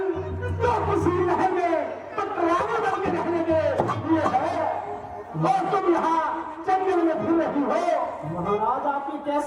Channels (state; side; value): identical; both; correlation 1.00